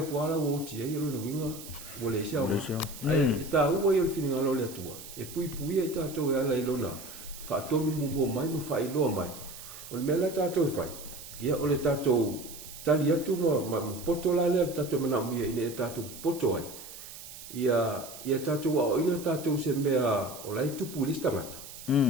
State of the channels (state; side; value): noise; right; hiss, 14 dB below the sound